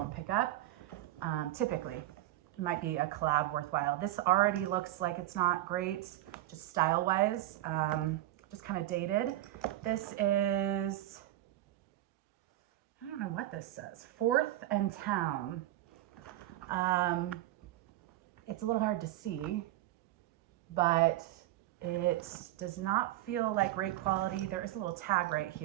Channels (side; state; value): left; quieter; 15.1 dB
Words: pick up. Typically, it might be a collab worthwhile. This already looks like it's not great, just style-wise, just kind of dated. This is, I don't know what this says, 4th and Town. It's a little hard to see, but it does not feel like great quality. There is a little tag right